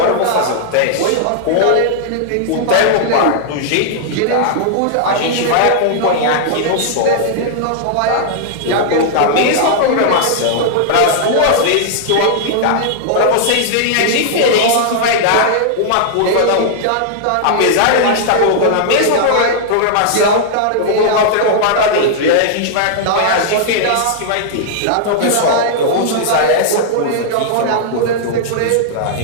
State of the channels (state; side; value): different; both; correlation -0.01